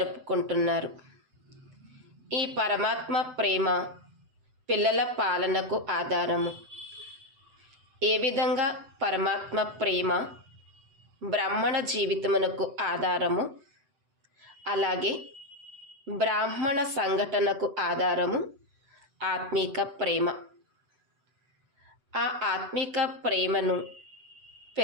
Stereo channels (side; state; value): left; late; 7.9 ms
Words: ఈ పరమాత్మ ప్రేమ పిల్లల పాలనకు ఆధారము. ఏ విధంగా పరమాత్మ ప్రేమ బ్రాహ్మణ జీవితమునకు ఆధారము, అలాగే బ్రాహ్మణ సంఘటనకు ఆధారము ఆత్మిక ప్రేమ. ఆ ఆత్మిక ప్రేమను